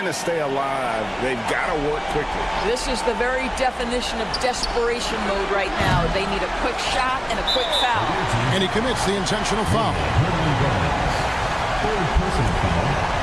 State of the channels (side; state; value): both; identical; correlation 1.00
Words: to stay alive. They've got to work quickly. This is the very definition of desperation mode right now. They need a quick shot and a quick foul. And he commits the intentional foul. Third personal foul.